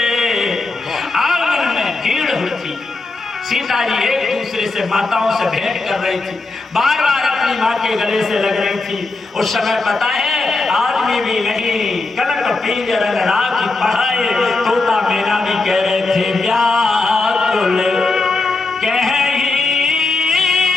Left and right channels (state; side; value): quieter; right; 3.5 dB